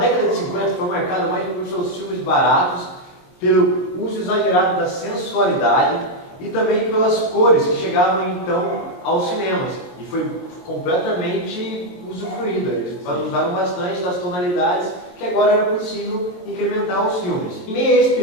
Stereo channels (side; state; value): right; late; 22 ms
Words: de 50 foi marcada mais por seus filmes baratos, pelo uso exagerado da sensualidade e também pelas cores que chegavam então aos cinemas. E foi completamente usufruída. Eles usaram bastante das tonalidades que agora era possível incrementar os filmes. Em meio a esse